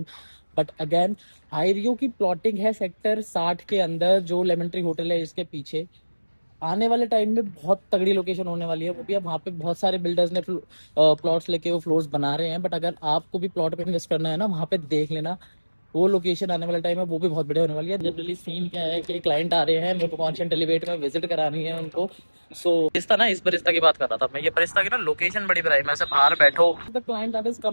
But again Ireo की प्लॉटिंग है सेक्टर 60 के अंदर, जो लेमन ट्री होटल है इसके पीछे। आने वाले टाइम में बहुत तगड़ी लोकेशन होने वाली है वो भी। अब वहाँ पे बहुत सारे बिल्डर्स ने प्लॉट्स लेके वो फ्लोर्स बना रहे हैं, बट अगर आपको भी प्लॉट पे इन्वेस्ट करना है ना, वहाँ पे देख लेना वो लोकेशन आने वाले टाइम में वो भी बहुत बढ़िया होने वाली है। जनरली सीन क्या है कि क्लाइंट आ रहे हैं, मेरे को कॉन्शियंट एलिवेट में विजिट करानी है उनको। सो इस तरह इस बरिस्ता की बात कर रहा था मैं। ये बरिस्ता की ना लोकेशन बड़ी बढ़िया है, मैं से बाहर बैठो। The client that is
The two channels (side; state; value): both; inverted; correlation -1.00